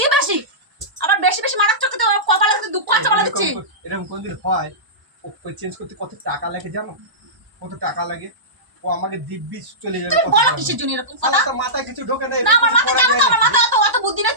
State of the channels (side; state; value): left; late; 1.0 ms